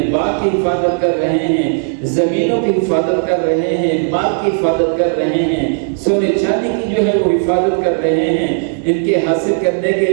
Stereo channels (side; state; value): left; silent; 66 dB below the other